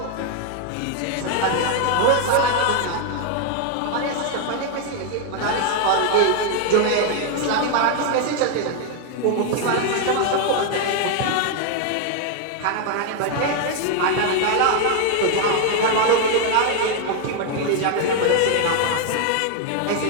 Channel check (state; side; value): different; both; correlation 0.01